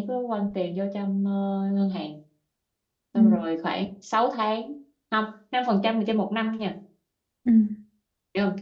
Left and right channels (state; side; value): identical; both; correlation 1.00